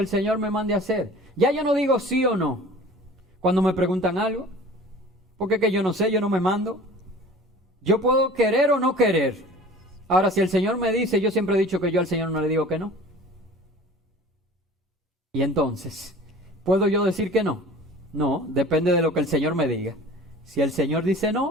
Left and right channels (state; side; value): normal; both; correlation 0.43